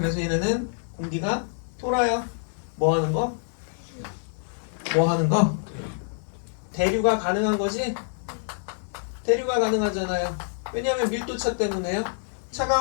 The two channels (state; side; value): silent; right; digital silence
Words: 얘네는 공기가 돌아요. 뭐 하는 거? 뭐 하는 거? 대류가 가능한 거지? 대류가 가능하잖아요. 왜냐하면 밀도차 때문에요.